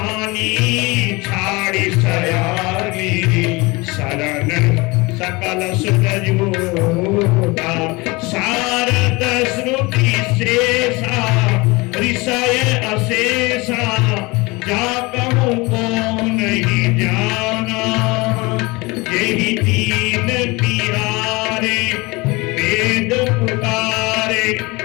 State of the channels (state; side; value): quieter; right; 24.4 dB